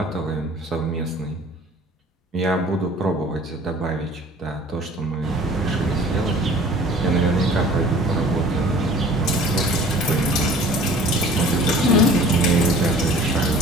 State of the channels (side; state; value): both; normal; correlation 0.48